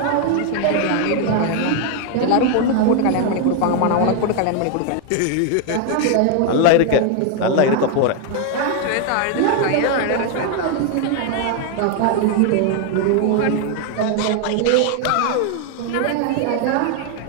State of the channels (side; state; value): both; different; correlation 0.00